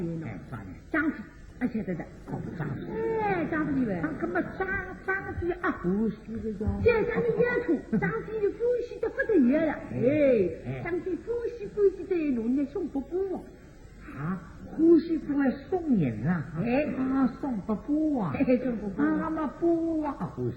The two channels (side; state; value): both; identical; correlation 1.00